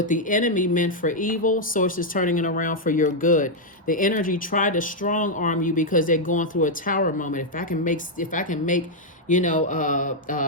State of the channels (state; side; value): normal; both; correlation -0.02